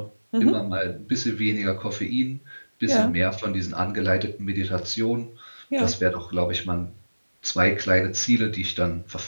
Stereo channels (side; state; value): both; inverted; correlation -1.00